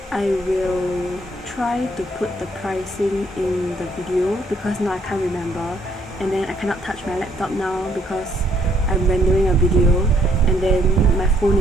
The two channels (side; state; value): both; normal; correlation 0.68